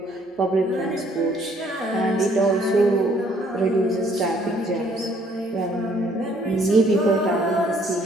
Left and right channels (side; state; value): both; normal; correlation 0.63